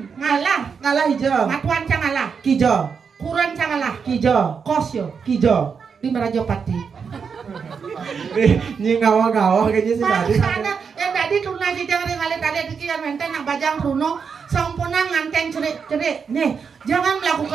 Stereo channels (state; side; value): quieter; left; 6.1 dB